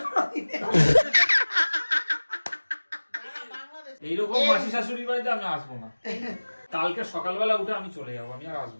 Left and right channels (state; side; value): inverted; both; correlation -1.00